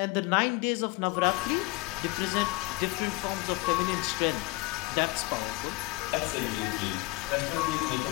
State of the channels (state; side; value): quieter; right; 22.7 dB